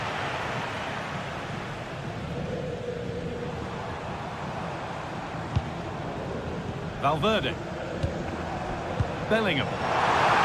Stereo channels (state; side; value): identical; both; correlation 1.00